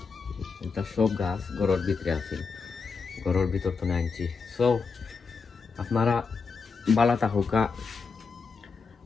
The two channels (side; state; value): right; quieter; 5.0 dB